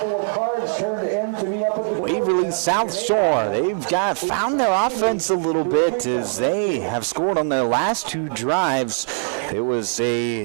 Waverly South Shore, they've found their offense a little bit as they have scored on their last 2 drives. It was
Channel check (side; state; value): left; silent; 65 dB below the other